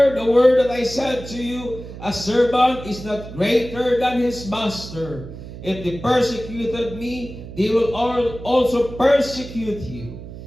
the word that I said to you, a servant is not greater than his master. If they persecuted me, they will also persecute you.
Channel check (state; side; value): noise; right; hum, 13 dB below the sound